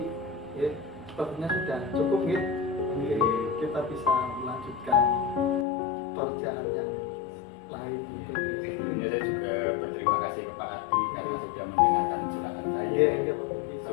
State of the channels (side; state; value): right; drops out; at 5.7 s